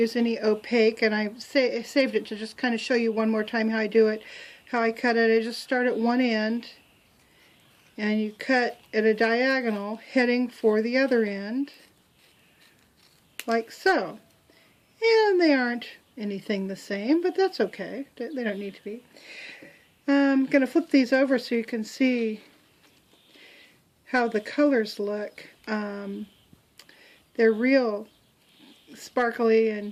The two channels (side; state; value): both; identical; correlation 1.00